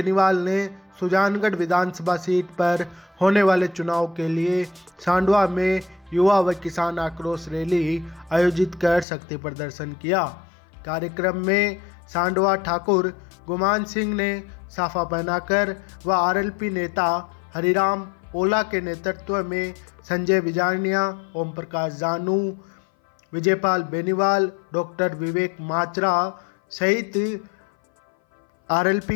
ने सुजानगढ़ विधानसभा सीट पर होने वाले चुनाव के लिए सांडवा में युवा व किसान आक्रोश रैली आयोजित कर शक्ति प्रदर्शन किया। कार्यक्रम में सांडवा ठाकुर गुमान सिंह ने साफा पहनाकर व आरएलपी नेता हरिराम ओला के नेतृत्व में संजय बिजारनिया, ओम प्रकाश जानू, विजयपाल बेनीवाल, डॉक्टर विवेक माचरा सहित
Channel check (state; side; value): drops out; right; at 9.1 s